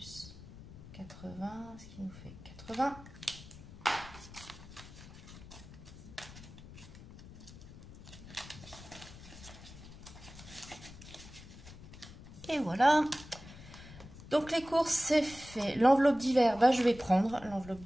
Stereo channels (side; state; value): left; noise; rumble, 16 dB below the sound